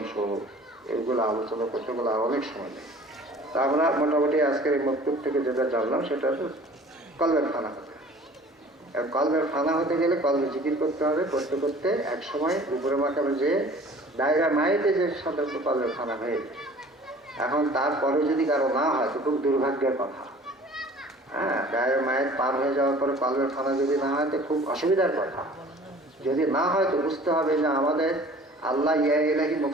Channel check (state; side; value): normal; both; correlation 0.48